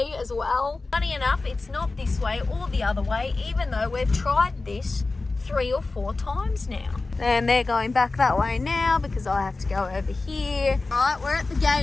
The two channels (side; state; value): right; quieter; 3.5 dB